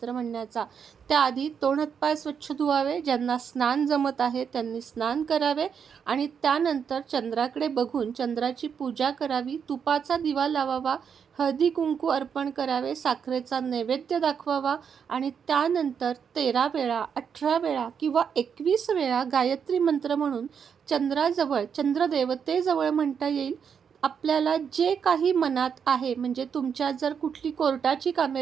म्हणण्याचा. त्याआधी तोंड हातपाय स्वच्छ धुवावे. ज्यांना स्नान जमत आहे त्यांनी स्नान करावे आणि त्यानंतर चंद्राकडे बघून चंद्राची पूजा करावी, तुपाचा दिवा लावावा, हळदी कुंकू अर्पण करावे, साखरेचा नैवेद्य दाखवावा आणि त्यानंतर 13 वेळा, 18 वेळा किंवा 21 वेळा गायत्री मंत्र म्हणून चंद्राजवळ, चंद्रदेवतेजवळ म्हणता येईल. आपल्याला जे काही मनात आहे, म्हणजे तुमच्या जर कुठली कोर्टाची कामे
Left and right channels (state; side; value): quieter; left; 7.1 dB